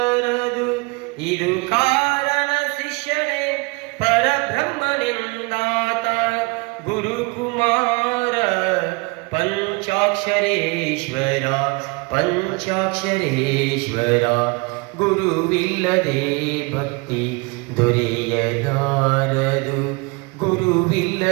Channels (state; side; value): quieter; left; 28.5 dB